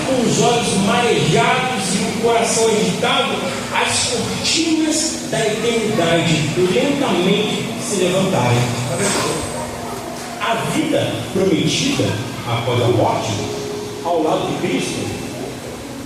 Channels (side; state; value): both; identical; correlation 1.00